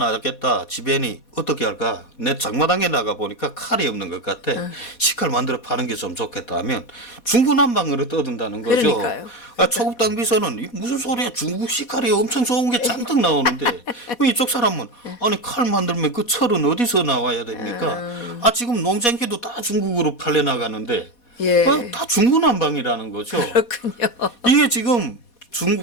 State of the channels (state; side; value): late; right; 4.2 ms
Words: 지배인이 어떻게 할까? 내 장마당에 나가 보니까 칼이 없는 것 같아. 식칼 만들어 파는 게 좀 좋겠다 하면 중구난방으로 떠든다는 거죠. 그러니까요. 초급당 비서는 무슨 소리야? 중국 식칼이 엄청 좋은 게 잔뜩 나오는데 이쪽 사람은 아니 칼 만들면 그 철은 어디서 나와야 됩니까? 지금 농장기도 다 중국으로 팔려 나가는데 예. 다 중구난방이라는 거죠. 그렇군요. 이게 지금